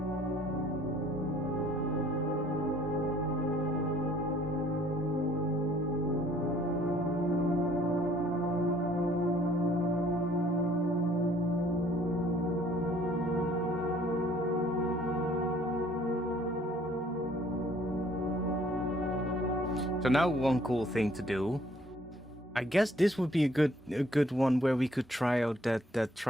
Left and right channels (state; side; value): normal; both; correlation 0.59